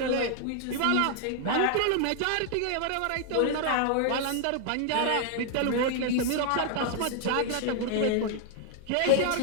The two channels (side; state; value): both; different; correlation 0.00